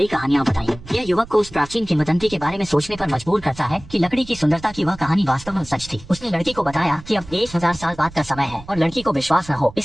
कहानियां बताई। यह युवक को उस प्राचीन किंवदंती के बारे में सोचने पर मजबूर करता है कि लकड़ी की सुंदरता की वह कहानी वास्तव में सच थी। उसने लड़की को बताया कि अब 1000 साल बाद का समय है और लड़की को विश्वास न हो,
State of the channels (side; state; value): right; noise; rumble, 18 dB below the sound